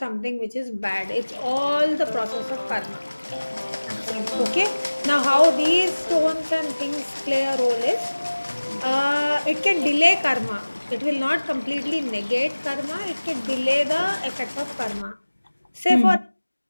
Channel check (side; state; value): both; inverted; correlation -1.00